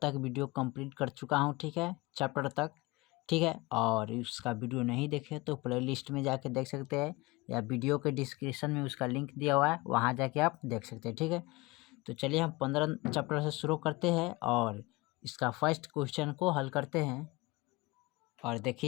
वीडियो कंप्लीट कर चुका हूं। ठीक है, चैप्टर तक। ठीक है, और उसका वीडियो नहीं देखे तो प्ले लिस्ट में जाके देख सकते हैं, या वीडियो के डिस्क्रिप्शन में उसका लिंक दिया हुआ है, वहाँ जाके आप देख सकते हैं। ठीक है, तो चलिए हम 15 चैप्टर से शुरू करते हैं और इसका फर्स्ट क्वेश्चन को हल करते हैं। और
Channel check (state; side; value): quieter; right; 23.0 dB